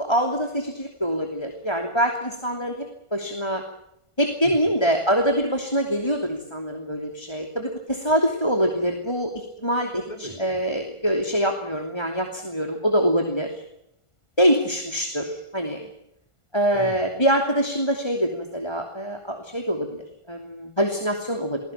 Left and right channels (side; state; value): right; late; 1.5 ms